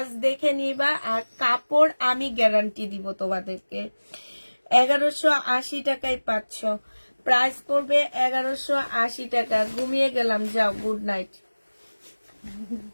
দেখে নিবা, আর কাপড় আমি গ্যারান্টি দিব তোমাদেরকে। 1180 টাকায় পাচ্ছ, প্রাইস পড়বে 1180 টাকা। ঘুমিয়ে গেলাম, যাও, গুড নাইট।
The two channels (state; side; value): inverted; both; correlation -1.00